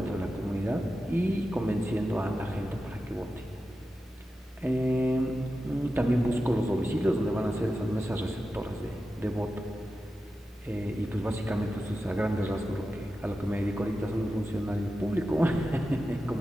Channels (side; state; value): both; normal; correlation 0.92